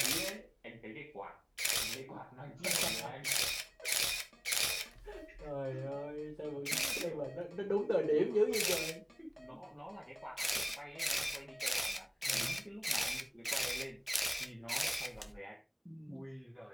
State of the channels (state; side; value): identical; both; correlation 1.00